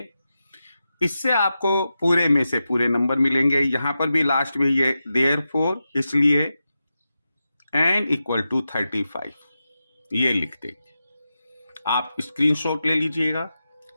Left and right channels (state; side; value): inverted; both; correlation -0.90